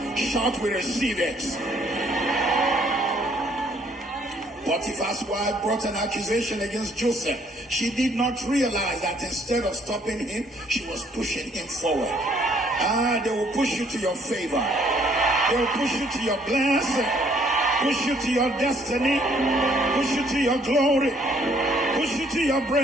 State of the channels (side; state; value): both; normal; correlation 0.64